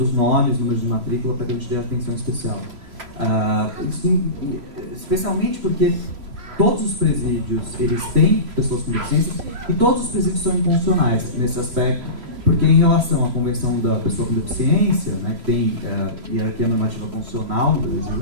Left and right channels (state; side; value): late; left; 3.0 ms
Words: nomes, números de matrícula, para que a gente dê atenção especial. Especialmente porque todos os presídios eles têm pessoas com deficiência e todos os presídios são inconstitucionais nesse aspecto, porque em relação à Convenção da Pessoa com Deficiência, né, que tem hierarquia normativa constitucional no Brasil,